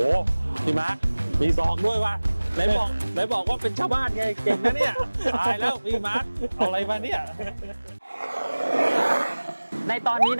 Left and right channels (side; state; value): both; inverted; correlation -1.00